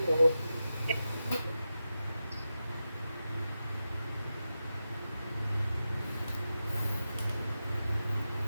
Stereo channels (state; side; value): inverted; both; correlation -0.91